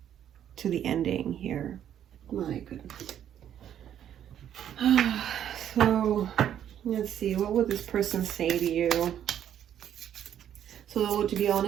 to the ending here. My goodness. So let's see, what would this person say to you? So to be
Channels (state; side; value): quieter; left; 10.1 dB